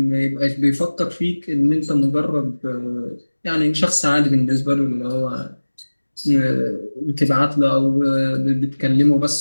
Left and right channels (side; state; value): both; inverted; correlation -1.00